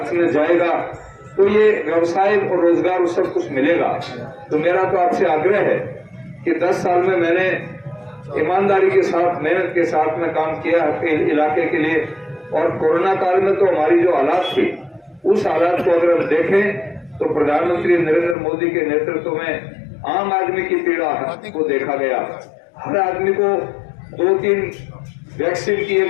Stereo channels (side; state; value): right; drops out; at 18.4 s